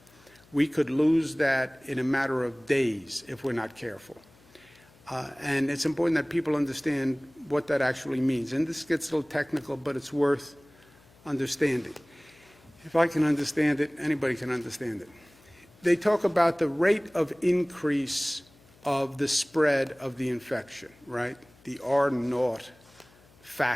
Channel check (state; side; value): noise; left; hum, 28 dB below the sound